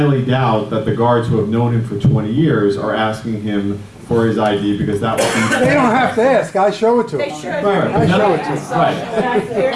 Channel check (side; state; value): both; identical; correlation 1.00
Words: doubt that the guards who have known him for 20 years are asking him for his ID because that would be... They don't have to ask, I show it to them. They should. Right. I show it to them. Right.